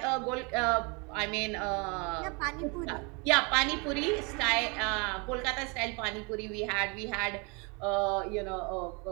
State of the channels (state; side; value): quieter; left; 31.2 dB